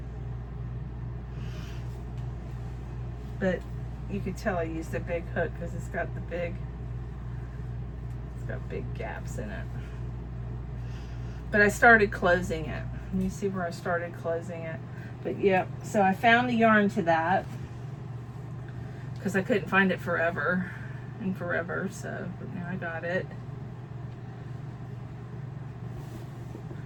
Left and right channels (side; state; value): both; identical; correlation 1.00